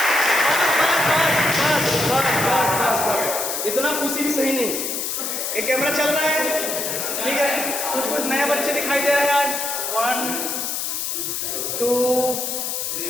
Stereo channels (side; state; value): left; noise; hiss, 2 dB below the sound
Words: बस इतना खुशी भी सही नहीं। एक कैमरा चल रहा है, ठीक है, कुछ कुछ नए बच्चे दिखाई दे रहे हैं आज। 1 2